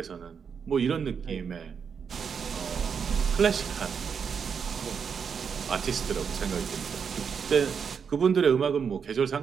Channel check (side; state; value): left; quieter; 6.6 dB